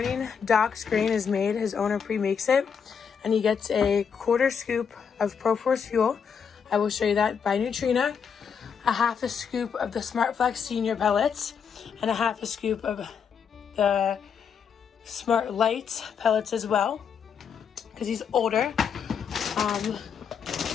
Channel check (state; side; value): quieter; right; 6.9 dB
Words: Doc's grain is made. His owner pre-makes it. And he gets a 1/4 scoop of ProForce fuel. I will show you that by Neutrina. A 1/2 scoop of the SmartFlex Senior pellets. And a 1/2 scoop of the Smart Lights pellets as well. Because he's older.